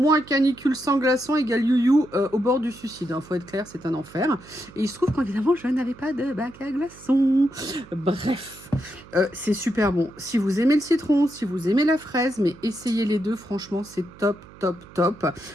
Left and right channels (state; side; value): noise; right; hum, 21 dB below the sound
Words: sans glaçons égale you au bord du suicide. Faut être clair, c'est un enfer. Et il se trouve qu'évidemment, je n'avais pas de bac à glaçons. Bref, c'est super bon. Si vous aimez le citron, si vous aimez la fraise, mais essayez les deux, franchement, c'est top.